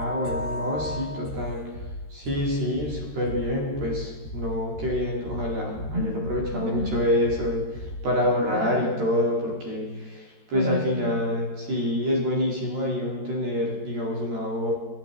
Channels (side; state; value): left; late; 13 ms